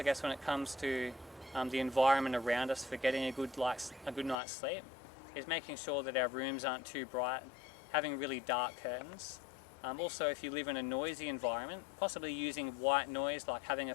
guess, when it comes to the environment around us for getting a good night's sleep is making sure that our rooms aren't too bright, having really dark curtains. Also, if you live in a noisy environment, possibly using white noise like having a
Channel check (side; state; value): right; drops out; at 4.4 s